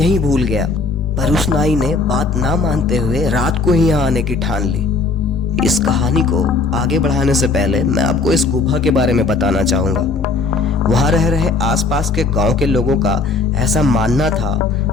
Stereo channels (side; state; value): right; quieter; 4.1 dB